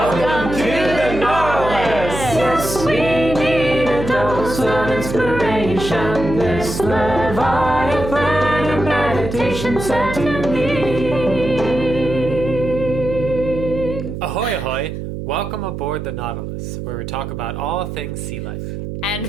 to the Nautilus! Yes, we need a dose of inspiration. This Leviathan of meditation set to me. Ahoy, ahoy! Welcome aboard the Nautilus, where we talk about all things sea life. And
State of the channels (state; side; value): noise; right; hum, 7 dB below the sound